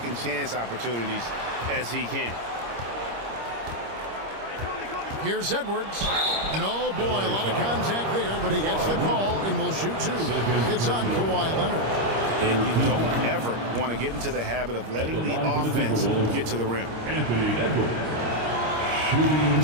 chance opportunities as he can. Here's Edwards. And oh boy, a lot of contact there, but he gets the call and will shoot 2. It's on Kawhi Leonard. And you don't ever want to get into the habit of letting the offense get to the rim. Anthony Edwards.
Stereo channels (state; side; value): late; left; 26 ms